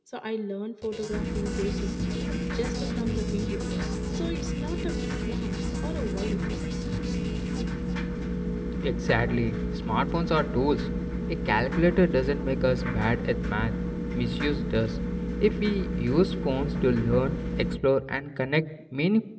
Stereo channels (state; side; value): identical; both; correlation 1.00